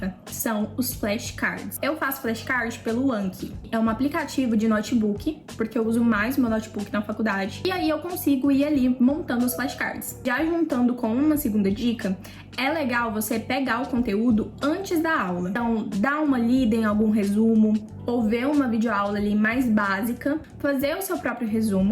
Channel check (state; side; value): identical; both; correlation 1.00